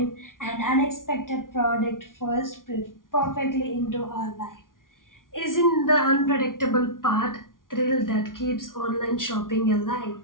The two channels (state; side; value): late; right; 0.89 ms